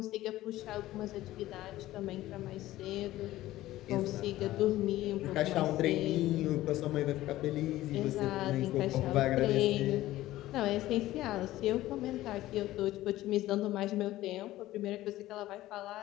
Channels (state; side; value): quieter; right; 15.7 dB